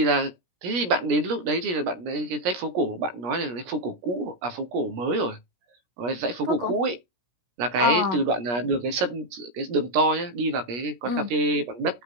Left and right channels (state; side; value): late; left; 17 ms